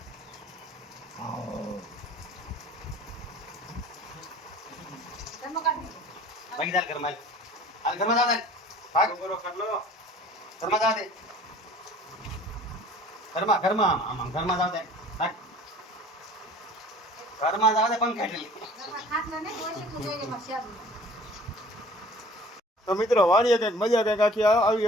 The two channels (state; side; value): normal; both; correlation 0.48